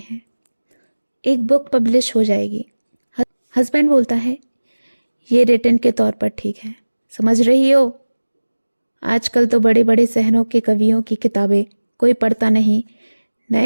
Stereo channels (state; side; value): inverted; both; correlation -1.00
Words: एक बुक पब्लिश हो जाएगी। हस्बैंड बोलता है, ये रिटन के तौर पर ठीक है, समझ रही हो, आजकल तो बड़े बड़े शहरों के कवियों की किताबें कोई पढ़ता नहीं,